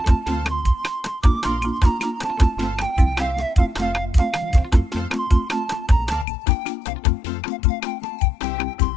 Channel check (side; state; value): right; drops out; at 6.2 s